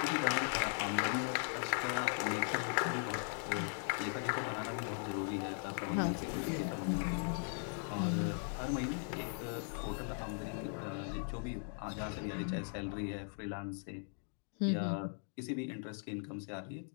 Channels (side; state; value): right; silent; 52 dB below the other